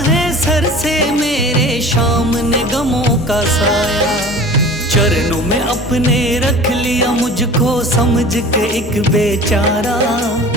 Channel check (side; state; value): both; normal; correlation 0.41